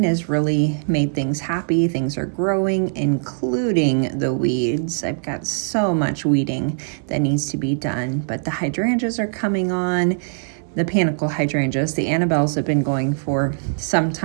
has really made things happy. Things are growing, including the weeds. I've got so much weeding that needs to be done, but the hydrangeas are coming on. The panicle hydrangeas, the Annabelles, have been going for some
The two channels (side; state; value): left; silent; digital silence